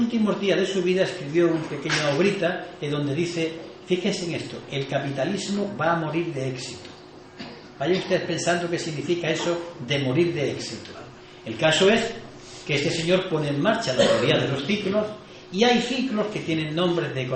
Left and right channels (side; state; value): both; identical; correlation 1.00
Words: días de su vida escribió una pequeña obrita en donde dice: fíjense en esto, el capitalismo va a morir de éxito. Vayan ustedes pensando qué significa eso de morir de éxito. El caso es que este señor pone en marcha la teoría de los ciclos, y hay ciclos que tienen nombres de